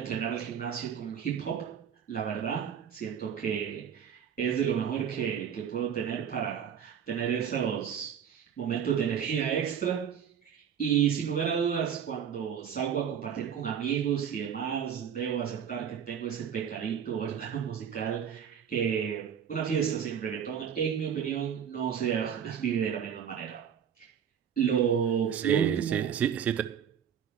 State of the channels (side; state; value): left; quieter; 8.2 dB